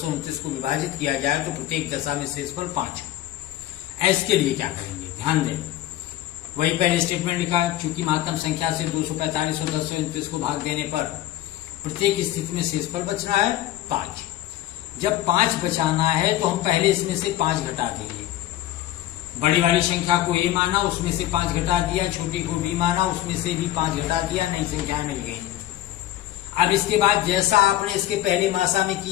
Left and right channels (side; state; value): right; quieter; 14.1 dB